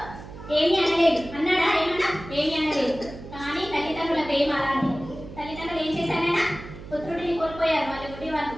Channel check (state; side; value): noise; right; hum, 14 dB below the sound